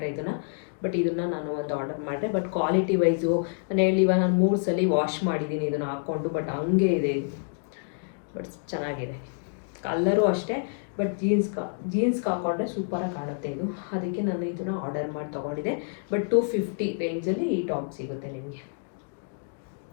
ಇದನ್ನು. ಬಟ್ ಇದನ್ನು ನಾನು ಒಂದು ಆರ್ಡರ್ ಮಾಡಿದೆ. ಬಟ್ ಕ್ವಾಲಿಟಿ ವೈಸು ನಾನು ಹೇಳಿವ, ನಾನು 3 ಸಲ ವಾಶ್ ಮಾಡಿದ್ದೀನಿ ಇದನ್ನು ಹಾಕ್ಕೊಂಡು. ಬಟ್ ಹಂಗೆ ಇದೆ ಇದು, ಬಟ್ ಚೆನ್ನಾಗಿದೆ. ಕಲ್ಲರು ಅಷ್ಟೇ, ಬಟ್ ಜೀನ್ಸ್ಗೆ ಹಾಕೊಂಡ್ರೆ ಸೂಪರಾಗಿ ಕಾಣುತ್ತೆ ಇದು. ಅದಕ್ಕೆ ನಾನು ಇದನ್ನು ಆರ್ಡರ್ ಮಾಡಿ ತೊಗೊಂಡಿದ್ದೆ. ಬಟ್ 250 ರೇಂಜಲ್ಲಿ ಈ ಟಾಪ್ ಸಿಗುತ್ತೆ ನಿಮಗೆ.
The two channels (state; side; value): silent; right; digital silence